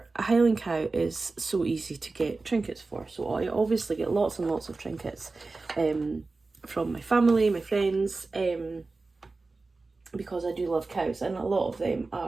a Highland cow is so easy to get trinkets for, so I obviously get lots and lots of trinkets from my family, my friends, because I do love cows, and a lot of them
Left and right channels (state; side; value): quieter; left; 3.7 dB